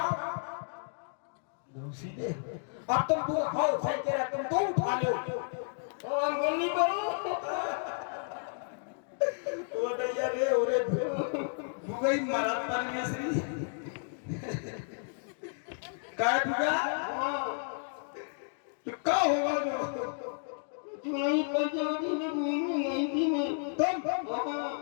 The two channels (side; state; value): right; silent; digital silence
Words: सीधे। अब तुम बुगा हो सही कह रहा तुम 2 उठा लो और अंगुली करो वो दैया रे ओरे बुगा ही मरा परमेश्वरी काय बुगा तो क्या होगा जो नहीं पंचवटी में घूमने नहीं थी मैं तुम